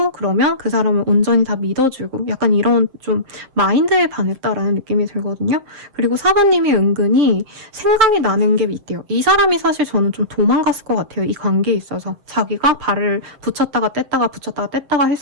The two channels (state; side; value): late; left; 7.6 ms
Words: 그러면 그 사람을 온전히 다 믿어주고 약간 이런 좀 마인드에 반했다라는 느낌이 들거든요. 그리고 4번님이 은근히 생각이 나는 게 있대요. 이 사람이 사실 저는 좀 도망갔을 것 같아요. 이 관계에 있어서. 자기가 발을 붙였다가 뗐다가 붙였다가 뗐다가